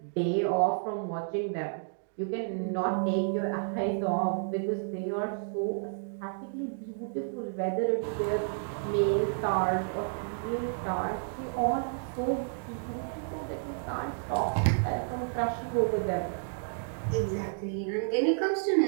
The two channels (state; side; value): silent; left; digital silence